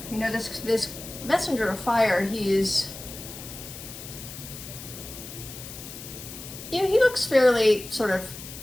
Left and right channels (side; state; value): left; noise; hiss, 12 dB below the sound